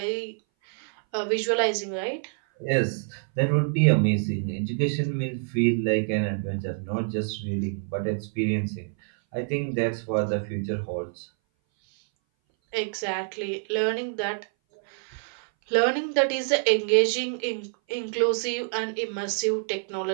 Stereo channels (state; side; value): silent; left; 58 dB below the other